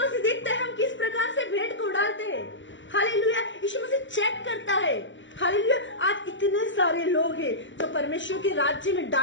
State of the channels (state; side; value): late; right; 0.54 ms